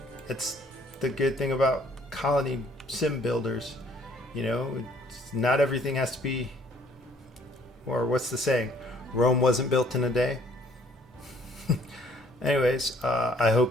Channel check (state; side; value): normal; both; correlation 0.60